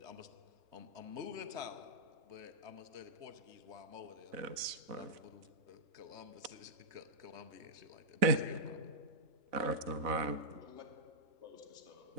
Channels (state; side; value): late; left; 4.0 ms